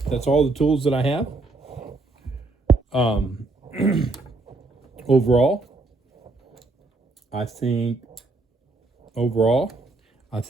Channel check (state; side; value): quieter; left; 3.3 dB